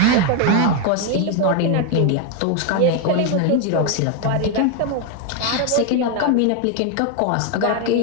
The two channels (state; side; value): different; both; correlation 0.01